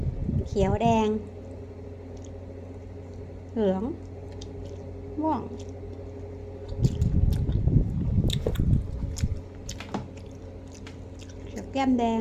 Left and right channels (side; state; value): both; identical; correlation 1.00